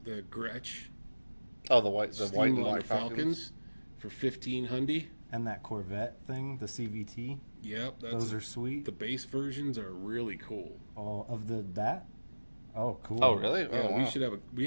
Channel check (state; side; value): inverted; both; correlation -1.00